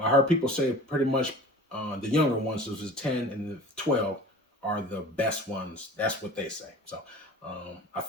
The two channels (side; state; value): both; normal; correlation 0.41